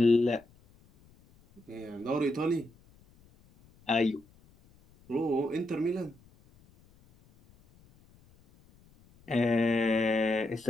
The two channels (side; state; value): left; noise; rumble, 29 dB below the sound